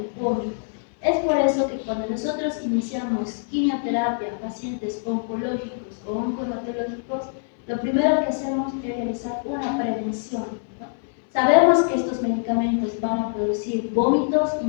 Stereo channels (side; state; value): right; silent; 62 dB below the other